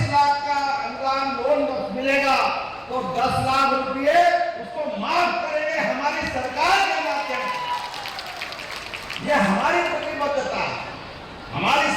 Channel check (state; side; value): identical; both; correlation 1.00